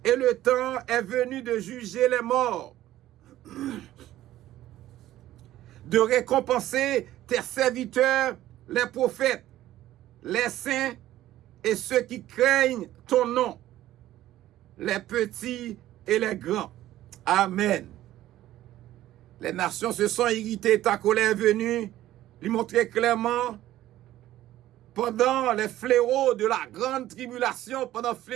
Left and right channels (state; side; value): quieter; left; 14.1 dB